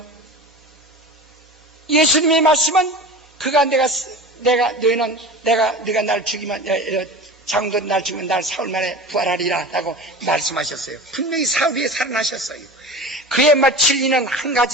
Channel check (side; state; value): both; normal; correlation 0.33